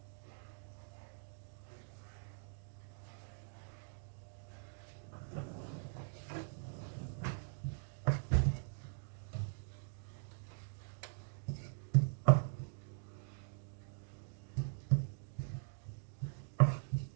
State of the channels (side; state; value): left; silent; digital silence